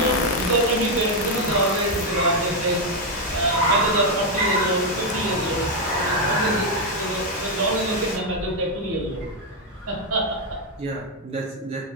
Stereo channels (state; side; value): normal; both; correlation 0.03